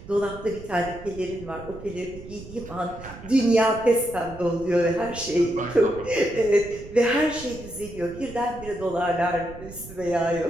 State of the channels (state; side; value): noise; right; rumble, 15 dB below the sound